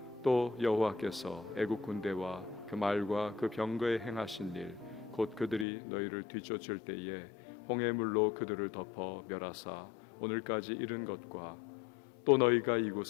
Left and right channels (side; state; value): right; drops out; at 5.7 s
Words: 또 여호와께서 애굽 군대와 그 말과 그 병거에 행하신 일 곧 그들이 너희를 뒤쫓을 때에 홍해물로 그들을 덮어 멸하사 오늘까지 이른 것과 또 너희가